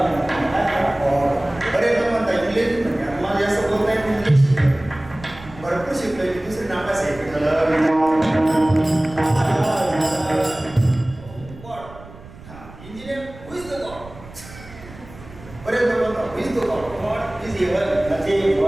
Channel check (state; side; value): noise; right; rumble, 18 dB below the sound